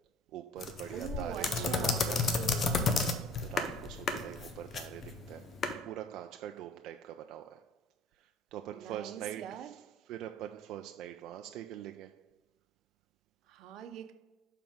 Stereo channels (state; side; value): normal; both; correlation 0.49